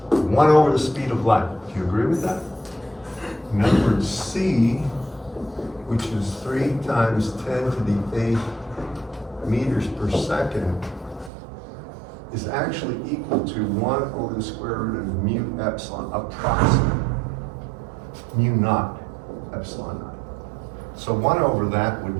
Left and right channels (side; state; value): left; drops out; at 11.3 s